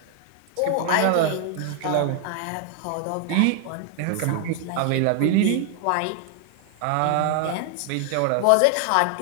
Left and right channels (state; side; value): different; both; correlation 0.00